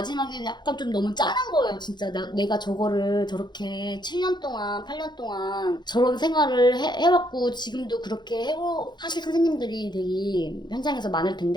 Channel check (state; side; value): late; right; 0.21 ms